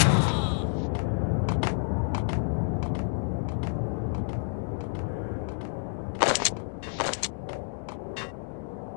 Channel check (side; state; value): right; silent; digital silence